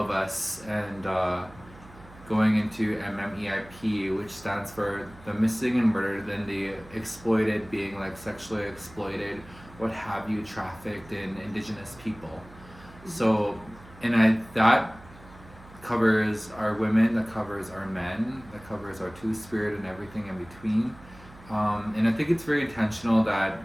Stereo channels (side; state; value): right; noise; hum, 21 dB below the sound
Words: us, and going into MMEIP, which stands for the missing and murdered, then the exploited, being like sexually exploited, what have you, trafficked in Indigenous people. So, and that covers our women, that covers our men, that covers our Two-Spirit and everything in between. And I think it's very intentional that